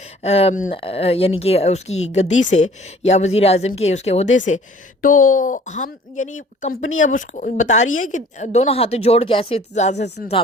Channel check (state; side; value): normal; both; correlation 0.52